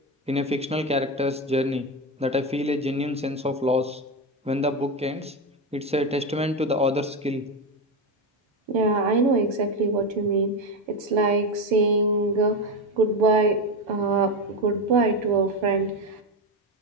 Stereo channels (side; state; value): both; normal; correlation 0.14